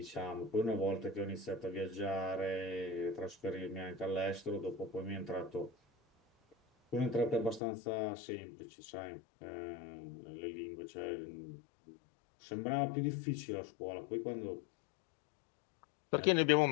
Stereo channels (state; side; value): drops out; right; at 7.6 s